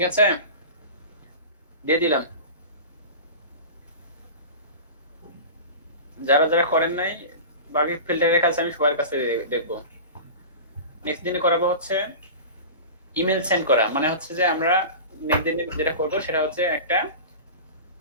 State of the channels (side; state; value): both; inverted; correlation -0.32